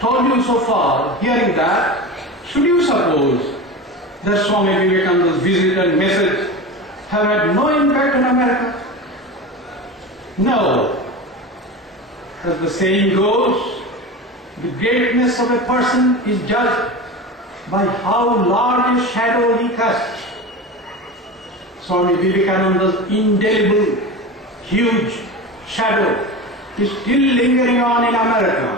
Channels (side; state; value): both; normal; correlation 0.28